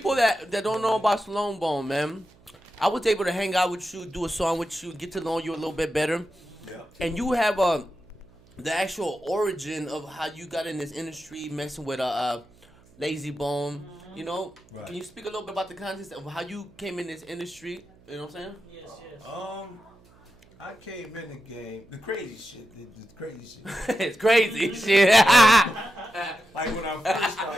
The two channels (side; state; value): right; noise; hum, 28 dB below the sound